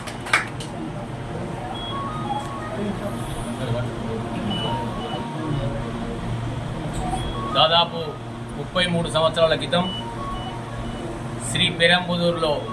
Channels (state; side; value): identical; both; correlation 1.00